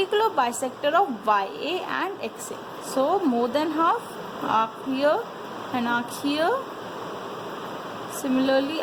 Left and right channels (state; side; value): identical; both; correlation 1.00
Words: bisector of YA and XA. So more than half, arc here and arc here. Similarly,